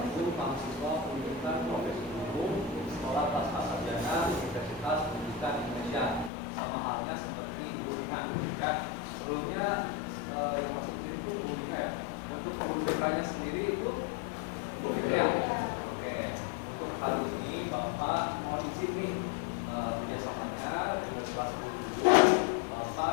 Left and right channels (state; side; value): drops out; right; at 6.3 s